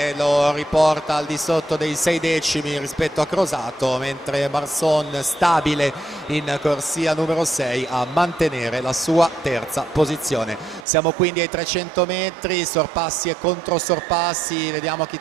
lo riporta al di sotto dei 6 decimi rispetto a Crosato, mentre Marson, stabile in corsia numero 6, a mantenere la sua terza posizione. Siamo quindi ai 300 metri, sorpassi e controsorpassi, vediamo chi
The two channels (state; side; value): drops out; left; at 10.9 s